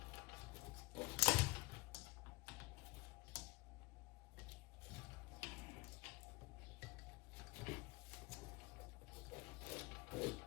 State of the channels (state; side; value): quieter; right; 23.0 dB